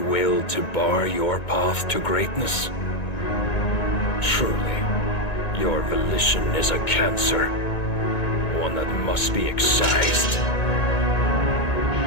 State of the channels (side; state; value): right; late; 2.2 ms